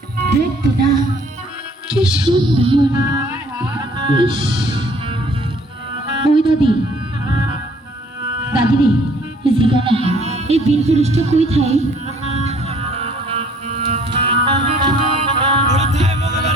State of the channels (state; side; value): normal; both; correlation 0.58